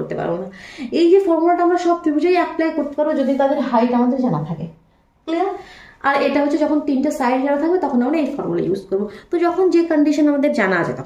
পারবো না। এই যে ফর্মুলাটা আমরা সব ত্রিভুজেই অ্যাপ্লাই করতে পারবো যদি তাদের হাইট আমাদের জানা থাকে। ক্লিয়ার? আর এটা হচ্ছে যখন তিনটে সাইড জানা থাকবে তখন আমরা এই ফর্মুলা ইউজ করবো। তো যখন যে কন্ডিশন আমাদের জানা আছে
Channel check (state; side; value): identical; both; correlation 1.00